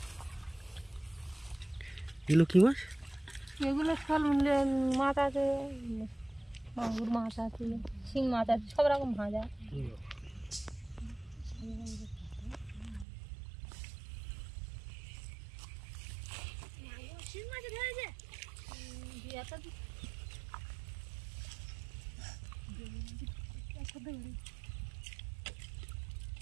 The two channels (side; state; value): left; drops out; at 13.1 s